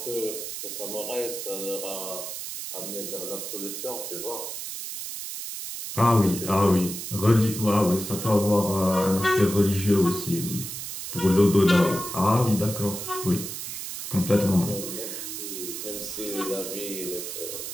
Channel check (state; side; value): noise; right; hiss, 7 dB below the sound